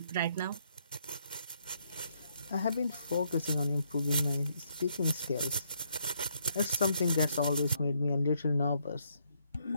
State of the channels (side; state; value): both; inverted; correlation -0.73